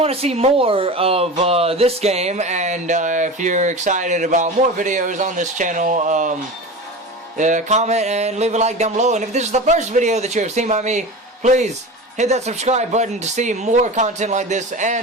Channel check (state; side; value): normal; both; correlation 0.30